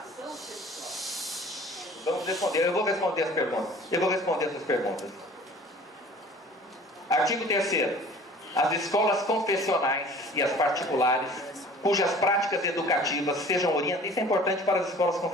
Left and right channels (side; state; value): both; normal; correlation 0.47